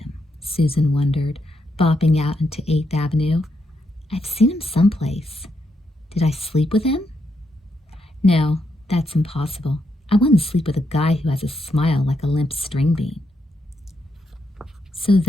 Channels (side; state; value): both; normal; correlation 0.80